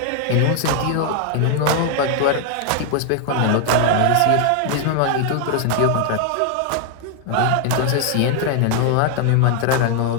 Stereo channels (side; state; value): both; different; correlation 0.00